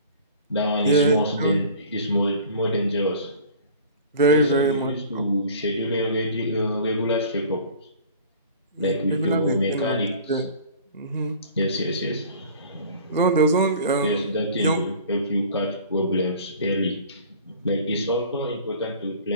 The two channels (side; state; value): both; inverted; correlation -0.45